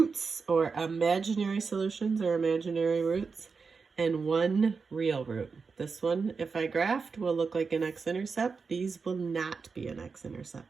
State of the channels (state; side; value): quieter; left; 5.0 dB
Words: or imaginary solutions or imaginary roots, and 1 real root. This one, if I graphed, will look like an x-intercept. These will not be an